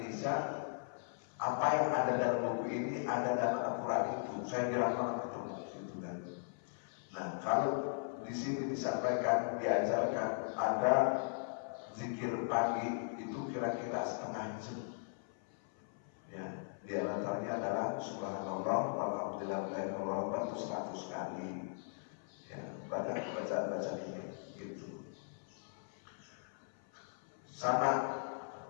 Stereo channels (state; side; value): silent; right; 52 dB below the other